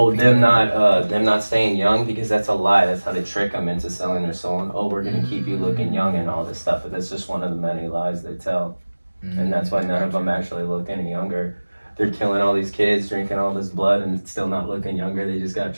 them not staying young, because that's a lie. That's how they trick them into selling their soul. And, oh, we're gonna keep you looking young and all this stuff. But that's just one of the many lies they tell. And that's why none of them actually look any younger. They're killing all these kids, drinking all this blood, and still not looking younger. They just got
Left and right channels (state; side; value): inverted; both; correlation -1.00